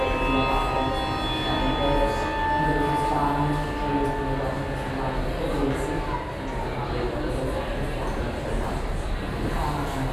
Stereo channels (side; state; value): both; identical; correlation 1.00